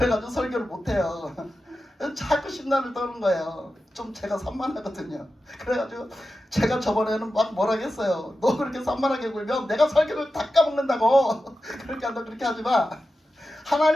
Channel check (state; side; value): normal; both; correlation 0.92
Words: 설교를 못해요. 자꾸 심란을 떠는 거예요. 좀 제가 산만하거든요. 그래가지고 제가 저번에는 막 뭐라 했어요. 너 그렇게 산만하게 굴면 내가 설교를 다 까먹는다고. 그렇게 하지 마.